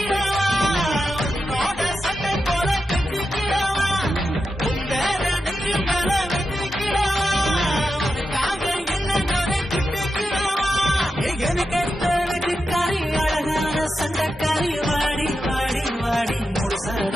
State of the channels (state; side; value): normal; both; correlation 0.89